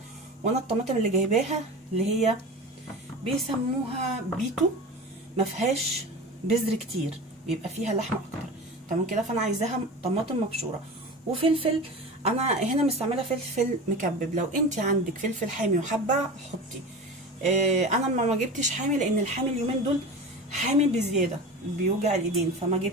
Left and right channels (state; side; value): normal; both; correlation 0.32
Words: وانا الطماطم اللي جايباها اللي هي بيسموها بيتو، ما فيهاش بذر كتير، بيبقى فيها لحمه اكتر. تمام كده. فانا عايزاها طماطم مبشوره. وفلفل، انا هنا مستعمله فلفل مكبب. لو انت عندك فلفل حامي وحابه حطي. انا ما جبتش حامي لان الحامي اليومين دول حامي بزياده بيوجع الايدين، فما